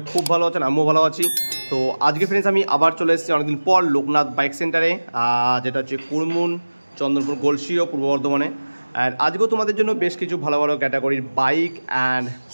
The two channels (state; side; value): inverted; both; correlation -1.00